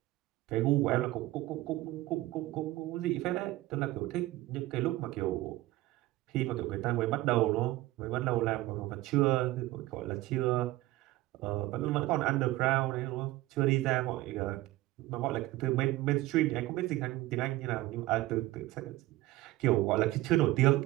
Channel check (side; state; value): left; quieter; 17.5 dB